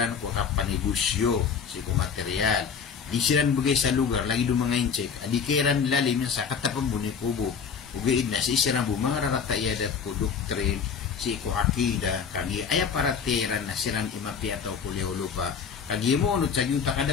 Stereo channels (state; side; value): quieter; right; 6.4 dB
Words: ko kapanigusyo si ko material di siran bugay sa lugar lagi do mga incheck adi kairan lalim sa katapang buni kubo ugay na si siran bu mga raratayadat ko doktrin si ko akida kagi aya para teran na siran imapi ataw kuliolo pa kagi mo no tag yung